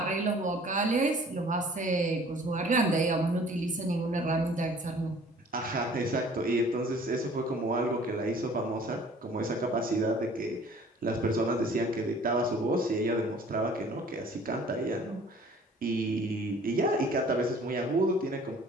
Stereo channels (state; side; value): normal; both; correlation 0.51